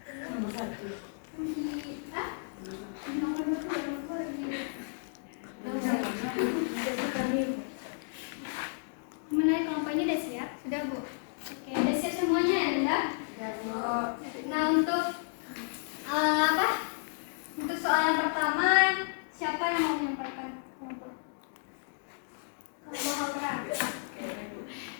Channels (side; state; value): right; silent; digital silence